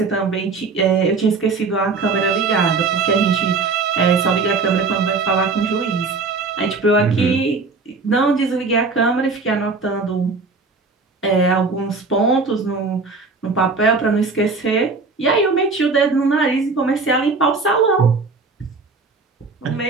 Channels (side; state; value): left; quieter; 4.2 dB